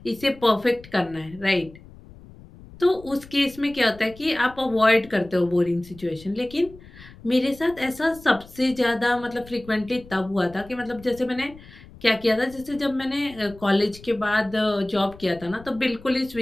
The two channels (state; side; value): noise; left; rumble, 20 dB below the sound